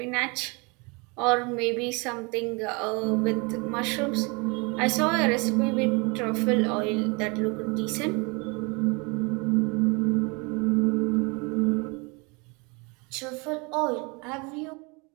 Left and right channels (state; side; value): quieter; left; 29.4 dB